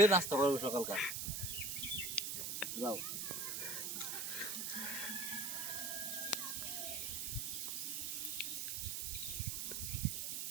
নাস্তা করবে সকালকার। যাও।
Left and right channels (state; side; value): noise; right; hiss, 2 dB below the sound